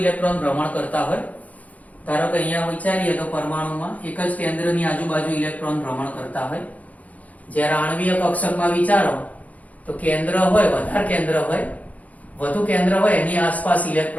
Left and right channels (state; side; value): late; right; 0.072 ms